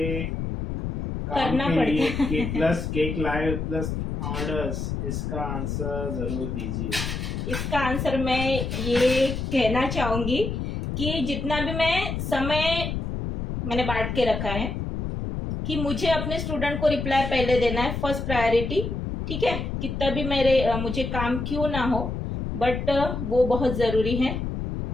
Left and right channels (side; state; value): left; noise; rumble, 4 dB below the sound